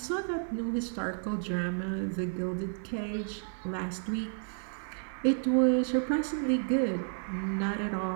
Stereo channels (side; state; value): left; silent; digital silence